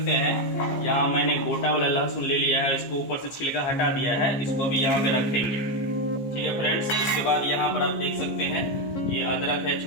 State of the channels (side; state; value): right; late; 15 ms